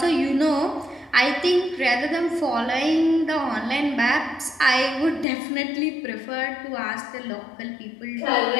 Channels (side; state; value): right; drops out; at 5.2 s